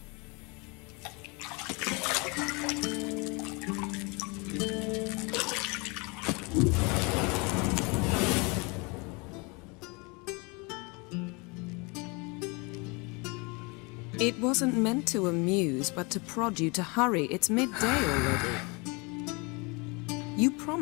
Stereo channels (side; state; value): right; quieter; 29.4 dB